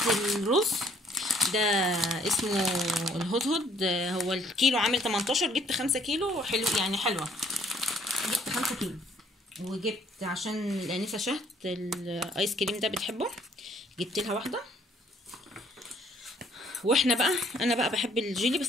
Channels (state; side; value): normal; both; correlation 0.63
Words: الرز ده اسمه الهدهد، هو الكيلو عامل 18، جبت 5 كيلو حلو يعني حلوه، جبت 5 كيلو. وجبت عشان الانسه شهد الايس كريم ده بتحبه، جبت لها واحده. واحنا بقى انا بقى بحب الجيلي بس